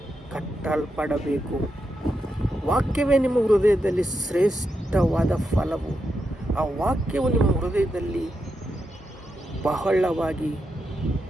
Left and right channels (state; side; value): normal; both; correlation 0.85